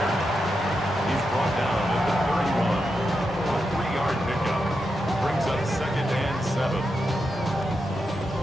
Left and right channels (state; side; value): normal; both; correlation 0.86